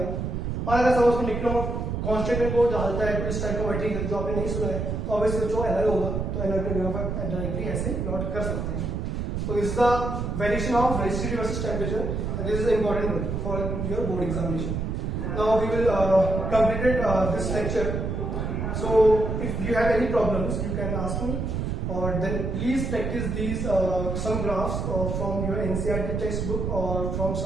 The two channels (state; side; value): noise; right; rumble, 2 dB below the sound